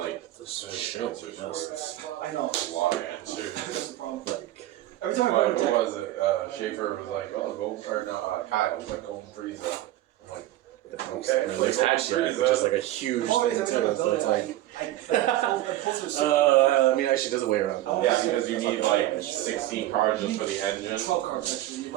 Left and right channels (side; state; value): left; quieter; 15.0 dB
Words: This there's shit. answers for I know. a lot of answers. That's the problem. Every time I Like, go to what deck, was it? Schaefer was like, oh, Golden, or no, Kyle was like Golden Freeze. I'm like, okay. I mean, like Hatchhyack, which is like a huge thing too. So it's like, I mean, actually, there's a way around that. Yeah, because you need like 16 cards just for the engine. 12 cards actually,